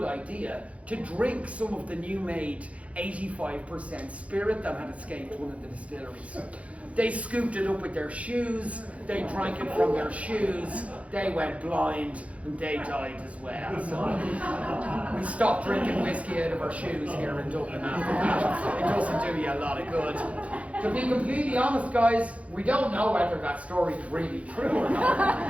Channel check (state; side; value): late; left; 0.064 ms